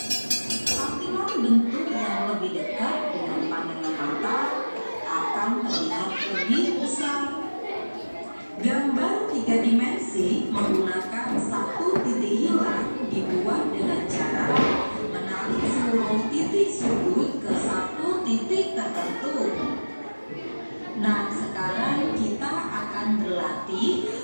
Tampilan bentuk yang lebih dekat dengan pandangan mata akan terlihat lebih besar. Gambar 3 dimensi menggunakan satu titik hilang dibuat dengan cara menarik seluruh titik sudut ke satu titik tertentu. Nah, sekarang kita akan berlatih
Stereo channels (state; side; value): inverted; both; correlation -1.00